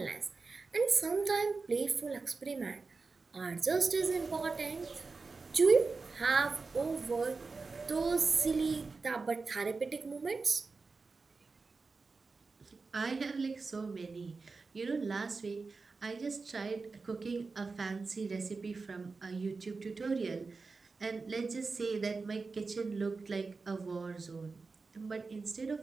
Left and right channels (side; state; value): left; quieter; 4.2 dB